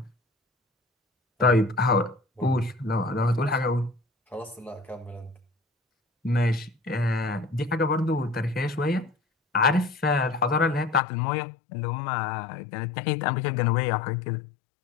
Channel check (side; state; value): right; drops out; at 11.0 s